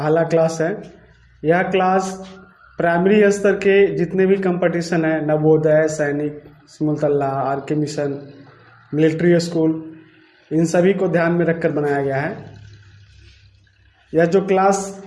क्लास है। यह क्लास प्राइमरी स्तर के जितने भी कंपटीशन है, Navodaya, Sainik, Simultala, RK. Mission, military school, इन सभी को ध्यान में रखकर बनाया गया है। यह जो क्लास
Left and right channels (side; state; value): both; identical; correlation 1.00